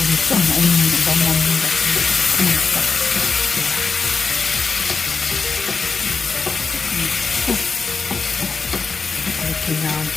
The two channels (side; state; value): right; quieter; 4.7 dB